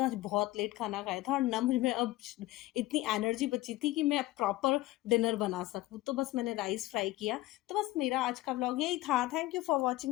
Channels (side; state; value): right; quieter; 17.4 dB